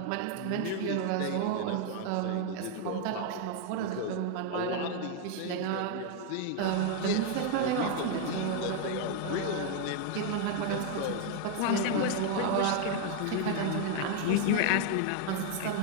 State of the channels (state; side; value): different; both; correlation 0.00